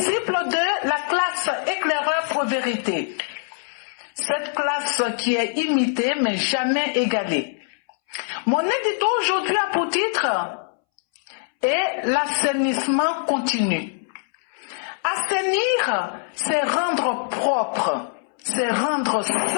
de la classe éclaireur Pro Vérité. Cette classe qui est imitée mais jamais égalée. Mon édito aujourd'hui a pour titre « l'assainissement continu ». Assainir, c'est rendre propre, c'est rendre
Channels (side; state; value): right; silent; 63 dB below the other